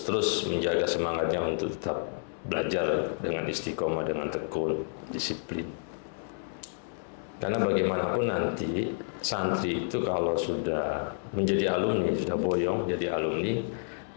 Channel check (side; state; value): right; silent; digital silence